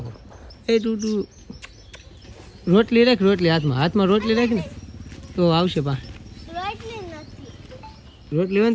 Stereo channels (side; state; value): both; identical; correlation 1.00